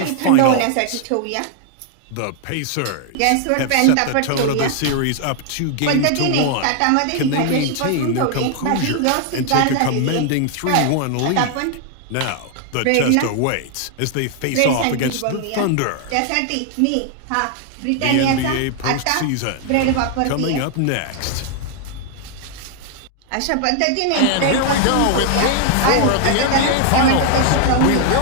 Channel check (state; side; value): different; both; correlation 0.00